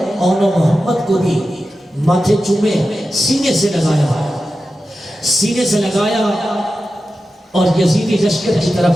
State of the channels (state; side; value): normal; both; correlation 0.92